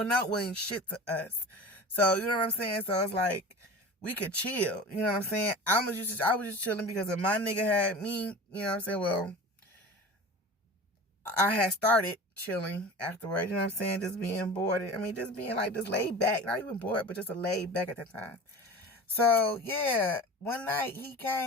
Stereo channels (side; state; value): both; normal; correlation 0.35